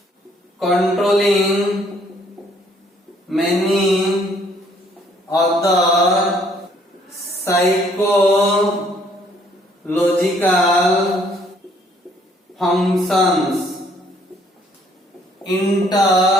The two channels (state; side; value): normal; both; correlation 0.64